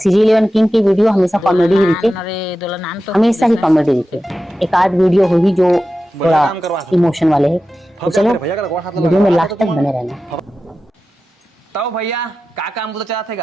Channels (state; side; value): normal; both; correlation 0.93